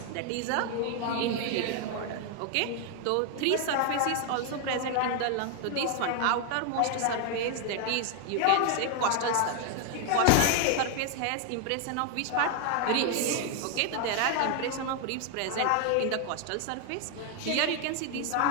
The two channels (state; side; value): different; both; correlation 0.00